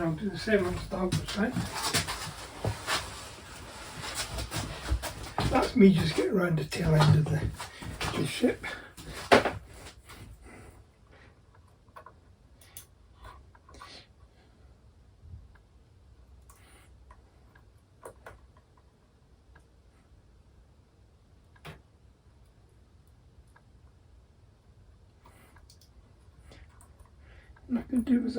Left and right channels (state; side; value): identical; both; correlation 1.00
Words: and do the same on the starboard side. That's me just getting around the tail end of the ship. I can do with